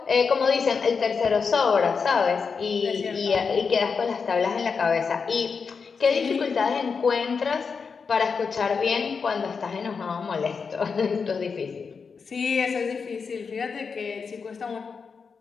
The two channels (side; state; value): right; quieter; 5.4 dB